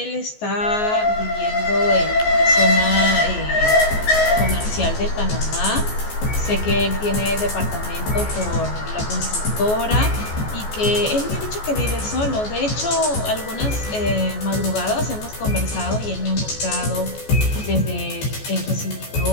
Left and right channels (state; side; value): late; right; 14 ms